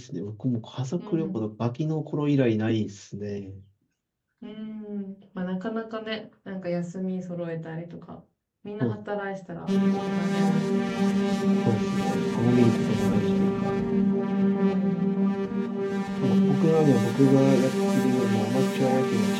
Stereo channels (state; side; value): identical; both; correlation 1.00